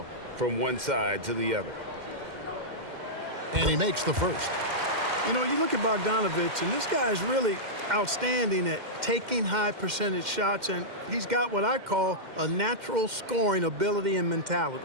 from one side to the other. And he makes the first. You know, you look at Bogdanovich, and this guy is really outstanding at taking high percentage shots, and he's got what I call a natural scoring ability and mentality.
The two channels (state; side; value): late; left; 2.1 ms